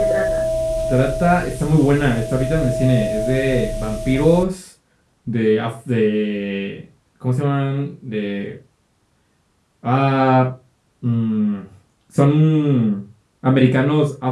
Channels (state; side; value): identical; both; correlation 1.00